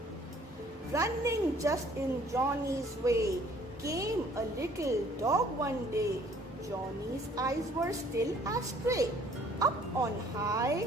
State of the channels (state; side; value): normal; both; correlation 0.57